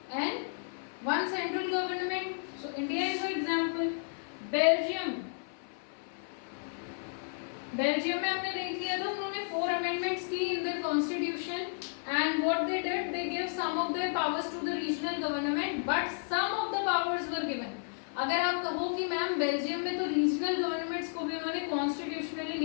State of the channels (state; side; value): silent; right; 56 dB below the other